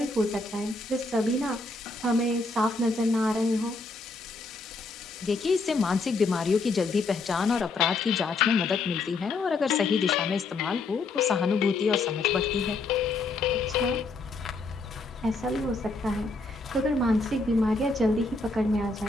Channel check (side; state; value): right; quieter; 3.6 dB